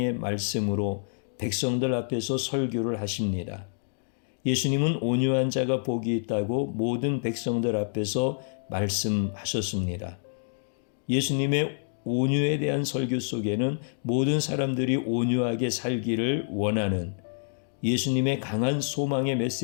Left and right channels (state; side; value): silent; right; digital silence